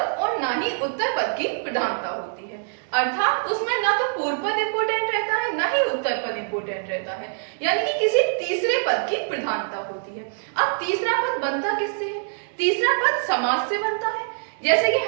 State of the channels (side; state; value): left; silent; digital silence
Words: और न ही उत्तर पद की प्रधानता होती है, अर्थात उसमें न तो पूर्व पद इंपोर्टेंट रहता है न ही उत्तर पद इंपोर्टेंट रहता है, यानी कि किसी तीसरे पद की प्रधानता होती है। अब तीसरा पद बनता किससे है? तीसरा पद समास से बनता है। जैसे कि